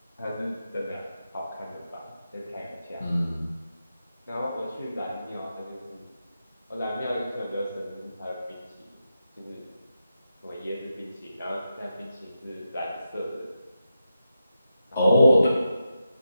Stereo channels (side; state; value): both; inverted; correlation -0.88